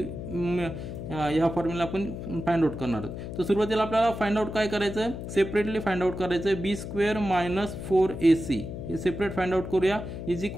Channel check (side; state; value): left; noise; hum, 8 dB below the sound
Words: ह्या फॉर्म्युला आपण फाइंड आउट करणार आहोत. तर सुरुवातीला आपल्याला फाइंड आउट काय करायचं आहे, सेपरेटली फाइंड आउट करायचं आहे. बी स्क्वेअर मायनस 4ac हे सेपरेट फाइंड आउट करूया. इज